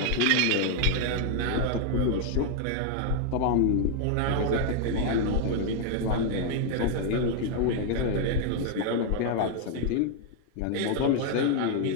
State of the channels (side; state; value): both; different; correlation 0.00